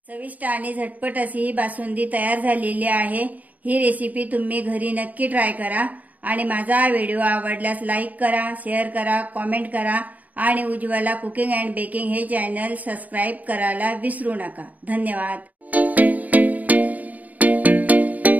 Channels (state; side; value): late; left; 0.075 ms